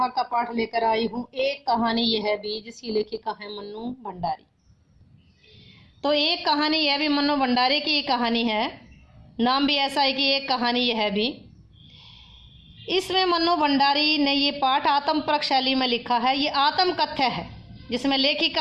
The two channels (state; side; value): identical; both; correlation 1.00